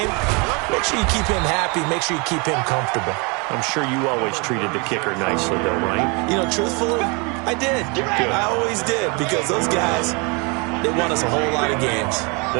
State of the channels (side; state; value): left; quieter; 30.9 dB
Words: Make sure you keep him happy. Make sure you keep him comfortable. I'm sure you always treated the kicker nicely, though, right? You know, truthfully, I did. Good. I always did because those guys, they won us a whole lot of games.